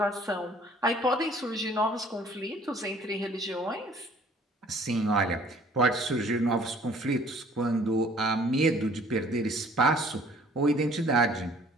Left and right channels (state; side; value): normal; both; correlation 0.56